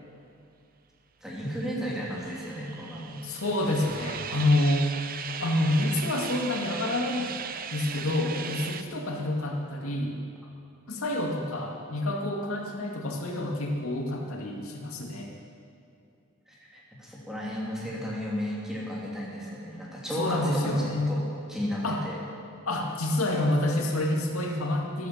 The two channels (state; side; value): normal; both; correlation 0.58